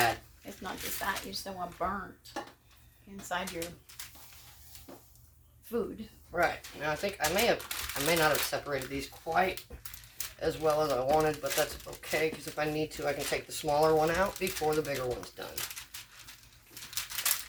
It's not just that. You just don't want burnt inside your food. Right. Now, I think I may not have separated these quite as well as I wanted, but that's okay, because if I need to, I can take the smaller one out before the bigger one's done.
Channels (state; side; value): identical; both; correlation 1.00